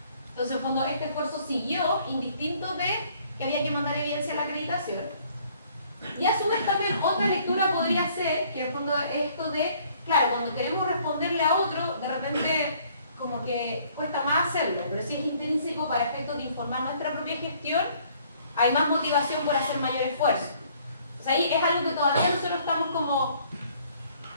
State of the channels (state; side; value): inverted; both; correlation -0.60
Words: Entonces en el fondo este esfuerzo siguió indistinto de que había que mandar evidencia a la acreditación. Y a su vez también otra lectura podría ser que en el fondo esto de, claro, cuando queremos responderle a otro, de repente como que cuesta más hacerlo, pero si es intrínseco para efectos de informar nuestra propia gestión, hay más motivación por hacer mayor esfuerzo. O sea, ahí es algo que todavía nosotros estamos como